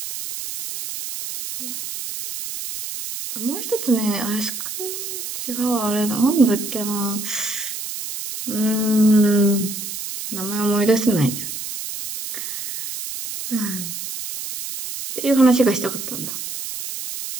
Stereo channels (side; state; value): right; noise; hiss, 7 dB below the sound